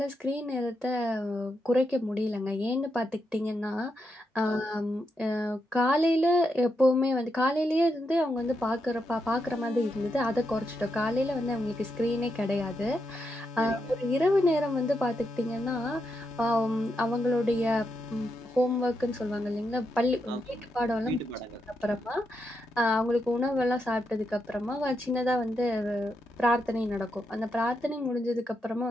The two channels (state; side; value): normal; both; correlation 0.83